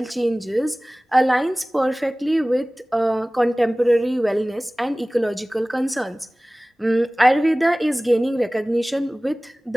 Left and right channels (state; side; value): normal; both; correlation 0.98